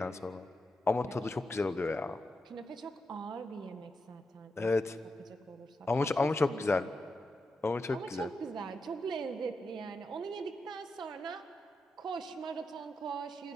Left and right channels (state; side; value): normal; both; correlation 0.86